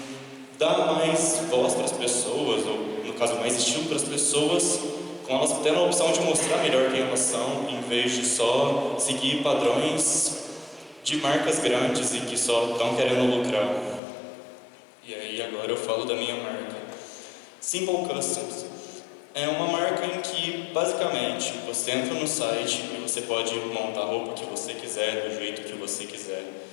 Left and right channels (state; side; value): drops out; right; at 14.0 s